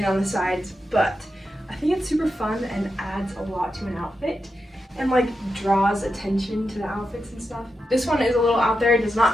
on the sides, but I think it's super fun and adds a lot to an outfit and like draws attention to the outfits and stuff. This one is a little out there. It does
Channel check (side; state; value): both; normal; correlation 0.88